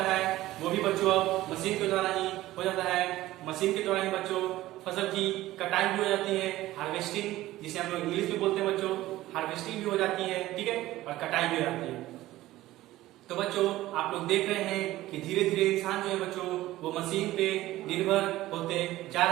है वो भी बच्चों अब मशीन के द्वारा ही हो जाता है। मशीन के द्वारा ही बच्चों फसल की कटाई भी हो जाती है, हार्वेस्टिंग जिसे हम लोग इंग्लिश में बोलते हैं बच्चों, हार्वेस्टिंग भी हो जाती है। ठीक है, और कटाई भी हो जाती है। तो बच्चों, आप लोग देख रहे हैं कि धीरे धीरे इंसान जो है बच्चों वो मशीन पे निर्भर होते जा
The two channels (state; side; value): quieter; left; 16.1 dB